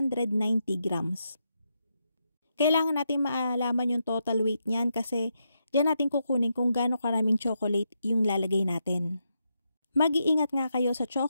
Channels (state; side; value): inverted; both; correlation -0.83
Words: grams. Kailangan natin maalaman yung total weight niyan kasi diyan natin kukunin kung gaano karaming chocolate yung lalagay natin. Mag-iingat nga kayo sa